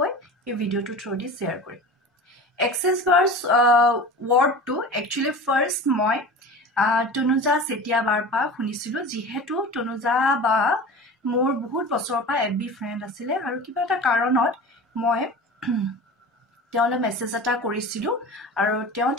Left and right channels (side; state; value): both; normal; correlation 0.35